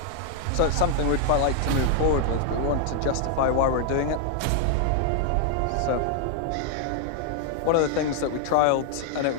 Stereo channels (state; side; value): different; both; correlation 0.00